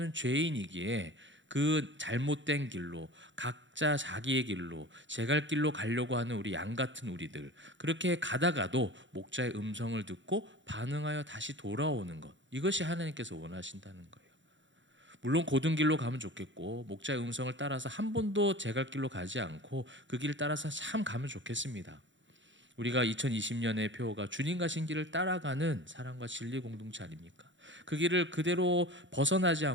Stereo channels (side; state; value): left; late; 0.54 ms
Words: 죄인이기에 그 잘못된 길로 각자 자기의 길로 제갈 길로 가려고 하는 우리 양 같은 우리들, 그렇게 가다가도 목자의 음성을 듣고 반응하여 다시 돌아오는 것, 이것이 하나님께서 원하신다는 거예요. 물론 고든 길로 가면 좋겠고 목자의 음성을 따라서 한 번도 제갈 길로 가지 않고 그 길을 따라서 참 가면 좋겠습니다. 우리가 2020년의 표어가 주님 가신 길을 따라가는 사랑과 진리 공동체 아닙니까? 그 길을 그대로 벗어나지